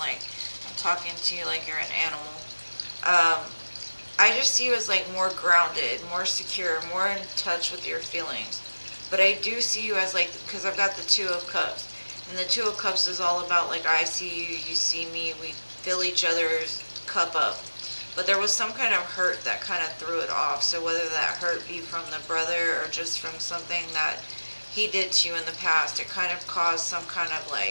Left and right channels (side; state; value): both; inverted; correlation -1.00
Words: I'm talking to you like you're an animal. I just see you as like more grounded, more secure, more in touch with your feelings. But I do see you as like, because I've got the Two of Cups. And the Two of Cups is all about like I see you, you see me, we fill each other's cup up. But there was some kind of hurt that kind of threw it off. So whether that hurt be from the brother or just from something that he did to you in the past, it kind of caused some kind of